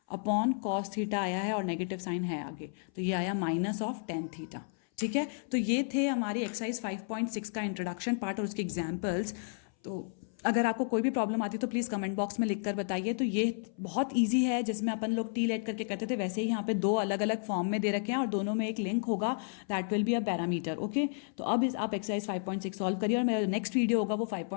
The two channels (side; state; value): right; silent; 56 dB below the other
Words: upon cos theta आया है और नेगेटिव साइन है आगे, तो ये आया -tan थीटा। ठीक है, तो ये थे हमारी एक्सरसाइज 5.6 का इंट्रोडक्शन पार्ट और उसके एग्जाम्पल्स। तो अगर आपको कोई भी प्रॉब्लम आती है तो प्लीज़ कमेंट बॉक्स में लिख कर बताइए। तो ये बहुत इजी है, जिसमें अपन लोग टी लेट करके करते थे वैसे ही यहाँ पे 2 अलग अलग फॉर्म में दे रखे हैं और दोनों में एक लिंक होगा, that will be a parameter. Okay, तो अब आप एक्सरसाइज 5.6 सॉल्व करिए और मेरा नेक्स्ट वीडियो होगा वो